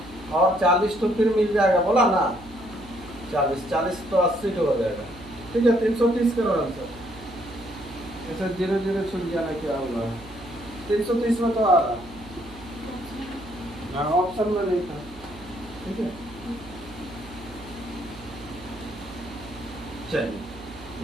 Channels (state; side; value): noise; right; hum, 19 dB below the sound